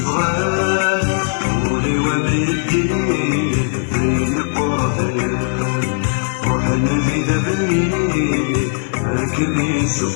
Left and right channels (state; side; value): silent; right; digital silence